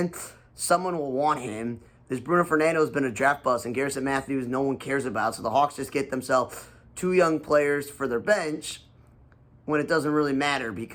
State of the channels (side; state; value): both; identical; correlation 1.00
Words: Someone will want him. This Bruno Fernando has been a draft bust, and Garrison Matthews no one cares about. So the Hawks just get themselves 2 young players for their bench when it doesn't really matter